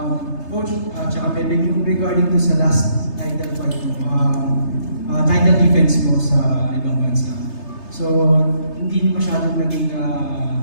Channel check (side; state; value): right; late; 3.3 ms